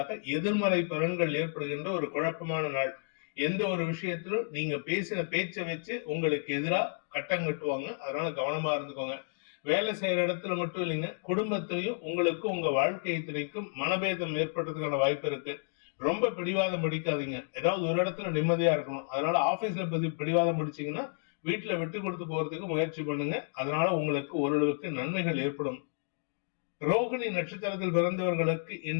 எதிர்மறை பலன்கள் ஏற்படுகின்ற ஒரு குழப்பமான நாள். எந்த ஒரு விஷயத்திலும் நீங்க பேசின பேச்சை வச்சு உங்களுக்கு எதிராக கட்டம் கட்டுவாங்க. அதனால கவனமா இருந்துக்கோங்க. வேலை செய்யற இடத்துல மட்டும் இல்லைங்க, குடும்பத்திலையும் உங்களுக்கும் உங்க வாழ்க்கை துணைக்கும் மனபேதம் ஏற்படுறதுக்கான வாய்ப்பு இருக்கு. ரொம்ப பிடிவாதம் பிடிக்காதீங்க. ஏதாவது ஒரு இடத்துல நிம்மதியா இருக்கணும். அதனால ஆபீஸ்ல பிடிவாதம் பிடிச்சீங்கன்னா வீட்டுல விட்டு கொடுத்து போறதுக்கு முயற்சி பண்ணுங்க. அதனால உங்களுக்கு ஓரளவுக்கு நன்மைகள் ஏற்படும். ரோகிணி நட்சத்திரத்தில் பிறந்தவர்களுக்கு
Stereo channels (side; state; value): right; silent; digital silence